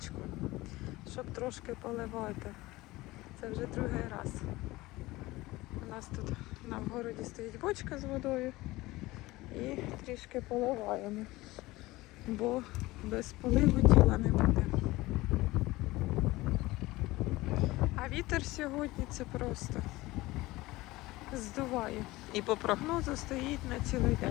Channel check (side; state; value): right; quieter; 19.5 dB